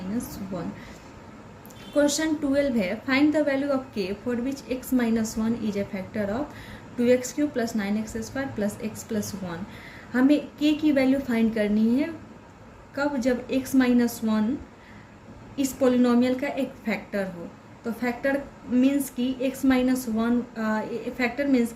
1। Question 12 है, find the value of k for which x minus 1 is a factor of 2x³ plus 9x² plus x plus 1। हमें k की value find करनी है कब, जब x minus 1 इस polynomial का एक फैक्टर हो। तो फैक्टर मीन्स कि x माइनस 1, फैक्टर मीन्स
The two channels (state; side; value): identical; both; correlation 1.00